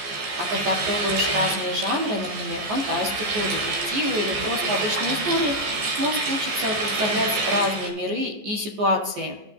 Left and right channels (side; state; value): left; late; 14 ms